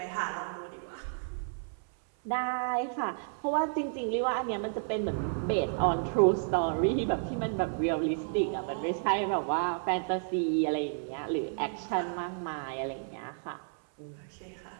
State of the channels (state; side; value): silent; left; 57 dB below the other